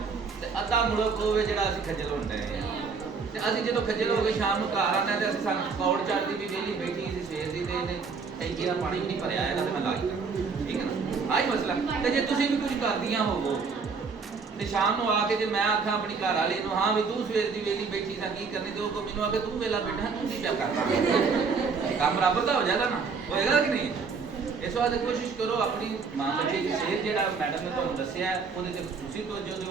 تے ادھا ملک ہوے جڑا اسی کھجل ہوندے ہیں. تے اسی جدوں کھجل ہو کے شام نوں گھر آنا تے اسی سان پکوڑ چڑھدی بھی ویلی بیٹھی سی سویر دی تے ٹینکی دا پانی نہیں بھریا ہے تے میں لا کے ٹھیک ہے نا. آہی مسئلہ. تے جے تسی بھی کچھ کردیاں ہوو تے شام نوں آ کے جے میں آکھاں اپنی گھر والی نوں ہاں بھی تو سویر دی ویلی بیٹھی سا کی کرنی تے او کو مینوں آ کے تو ویلا بیٹھا تو کی پیا کرنا کام برابر دا ہو جاتا نا ہوئے گا کہ نہیں. اس واسطے کوشش کرو اپنی ماں بچے کی صحت جہاں میڈم نے تمہیں دسیا ہے وہ خصوصی توجہ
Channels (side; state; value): left; quieter; 5.1 dB